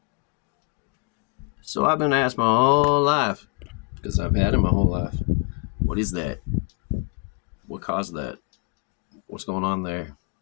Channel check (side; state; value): right; quieter; 33.5 dB